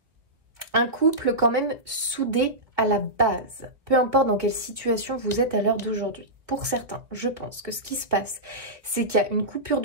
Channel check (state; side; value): late; left; 1.7 ms